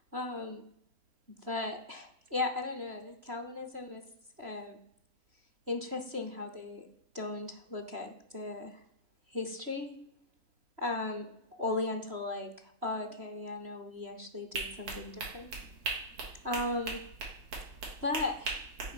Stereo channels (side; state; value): left; late; 3.0 ms